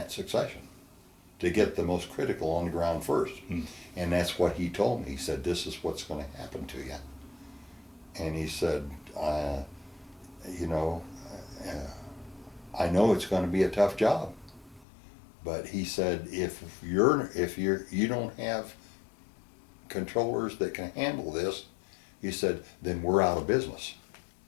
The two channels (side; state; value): right; drops out; at 14.9 s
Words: succession to get the most critical on the ground first. And that's what he told me. He said, this is what's going to happen to you. And he said, I know it's going to be a tough job, but he said, if you don't have controllers that can handle this, he said, then we're out of business.